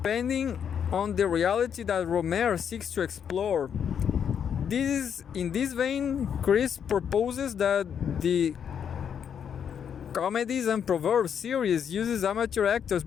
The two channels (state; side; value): quieter; right; 8.0 dB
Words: on the reality that Rohmer seeks to explore. In this vein, Chris proposes that the Comedies and Proverbs series uses amateur actors